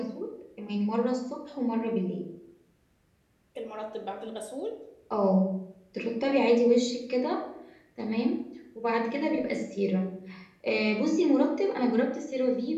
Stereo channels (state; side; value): identical; both; correlation 1.00